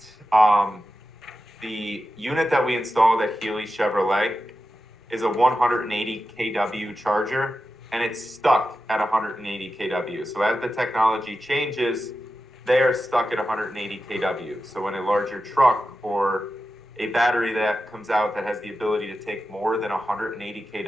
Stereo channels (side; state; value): both; normal; correlation 0.91